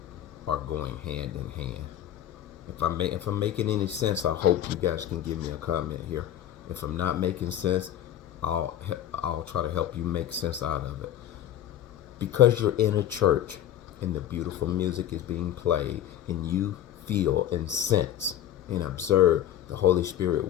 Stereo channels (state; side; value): quieter; right; 11.2 dB